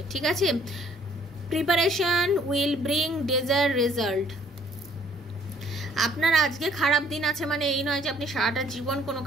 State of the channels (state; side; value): normal; both; correlation 0.61